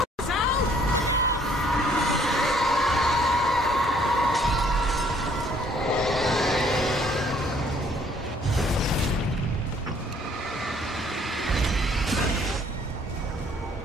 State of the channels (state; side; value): normal; both; correlation 0.62